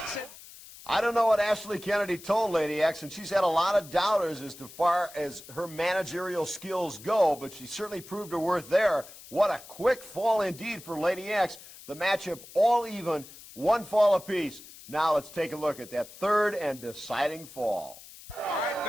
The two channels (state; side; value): noise; left; hiss, 18 dB below the sound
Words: I don't know what Ashley Kennedy told Lady X, and she's had a lot of doubters as far as her managerial skills go, but she certainly proved her worth there. What a quick fall indeed for Lady X. The matchup all even, 1 fall apiece. Now let's take a look at that third and deciding fall. All right,